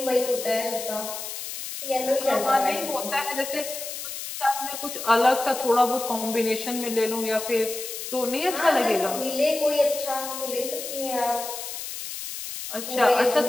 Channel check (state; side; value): noise; left; hiss, 7 dB below the sound